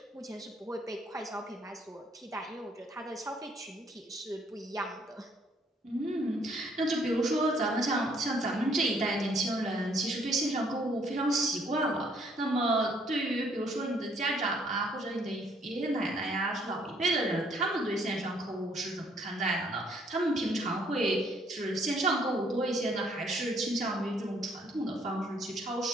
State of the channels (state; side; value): normal; both; correlation 0.65